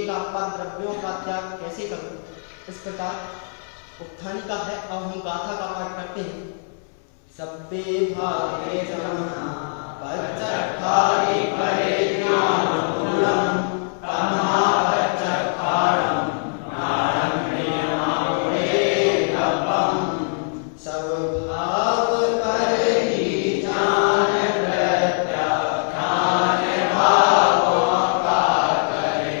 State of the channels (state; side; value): silent; right; 64 dB below the other